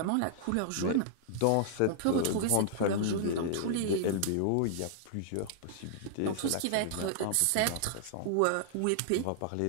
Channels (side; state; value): both; different; correlation -0.01